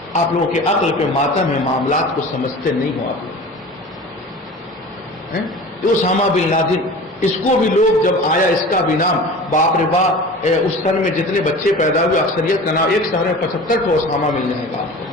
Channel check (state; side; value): normal; both; correlation 0.37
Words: آپ لوگوں کے عقل پہ ماتم ہے، معاملات کو سمجھتے نہیں ہو آپ لوگ۔ اسامہ بن لادن، اس کو بھی لوگ جب آیا اس کا بھی نام، باپ رے باپ، اس سن میں جتنے بچے پیدا ہوئے اکثریت کا نام، ایک شہر میں 75 کو اسامہ مل جائے گا آپ کو،